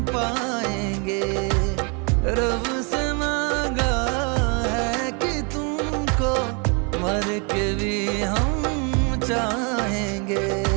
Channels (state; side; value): quieter; left; 34.4 dB